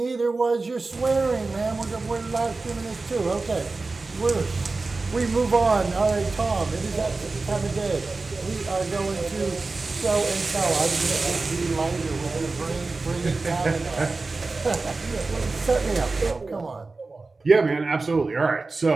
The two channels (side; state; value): left; quieter; 3.7 dB